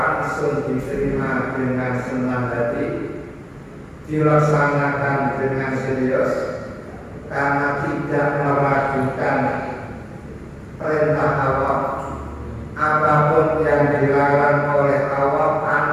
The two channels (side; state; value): both; identical; correlation 1.00